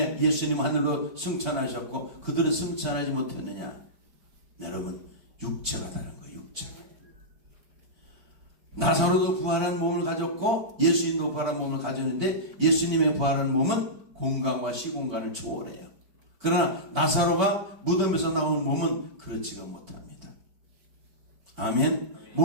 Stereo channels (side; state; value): left; late; 4.4 ms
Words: 예수님 하늘로 승천하셨고 그들은 승천하지 못했느냐? 여러분, 육체가 다른 거예요. 육체. 나사로도 부활한 몸을 가졌고 예수님도 부활한 몸을 가졌는데 예수님의 부활한 몸은 공간과 시공간을 초월해요. 그러나 나사로가 무덤에서 나온 몸은 그렇지가 못합니다. 아멘.